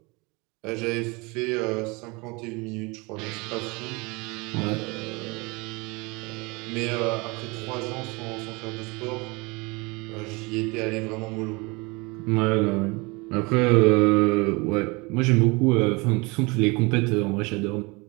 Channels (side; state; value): left; quieter; 26.8 dB